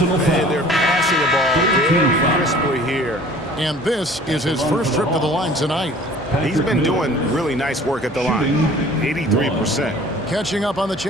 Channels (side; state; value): both; normal; correlation 0.49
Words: foul. And they're passing the ball very crisply here. And this is his first trip to the line tonight. He's been doing really nice work at the line. 83%. Catching up on the